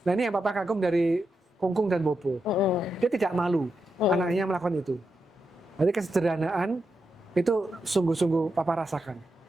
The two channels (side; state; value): both; normal; correlation 0.86